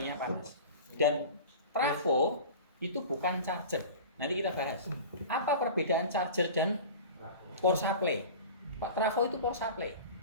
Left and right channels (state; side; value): inverted; both; correlation -0.36